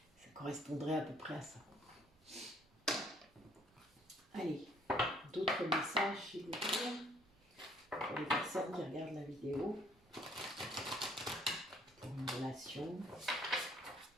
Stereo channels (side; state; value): both; normal; correlation 0.63